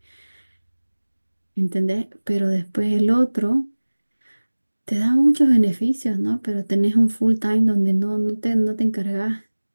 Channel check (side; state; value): both; inverted; correlation -1.00